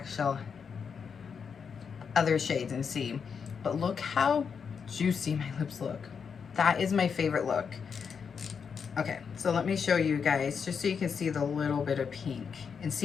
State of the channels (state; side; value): quieter; right; 6.4 dB